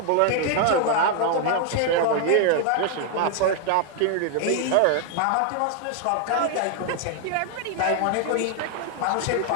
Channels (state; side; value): different; both; correlation 0.00